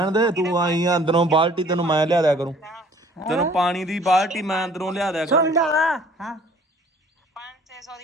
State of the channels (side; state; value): both; normal; correlation 0.54